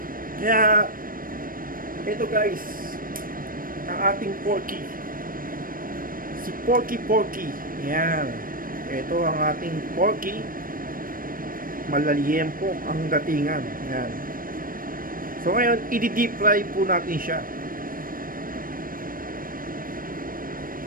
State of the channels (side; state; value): left; late; 0.41 ms